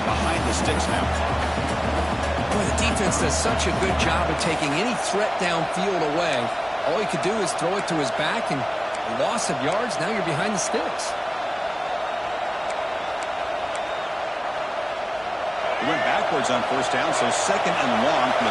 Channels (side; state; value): both; identical; correlation 1.00